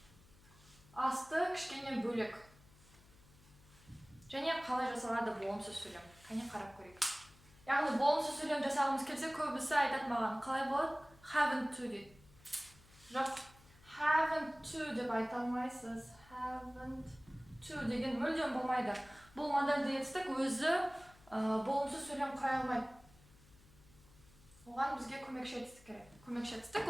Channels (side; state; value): left; noise; hum, 25 dB below the sound